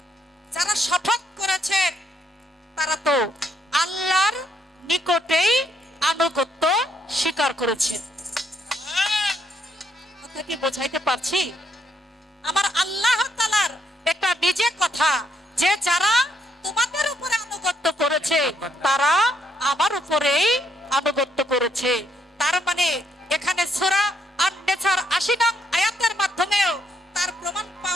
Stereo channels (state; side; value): normal; both; correlation 0.73